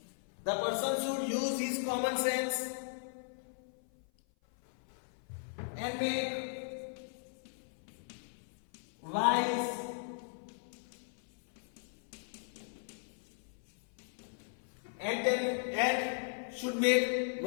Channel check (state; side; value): silent; right; 53 dB below the other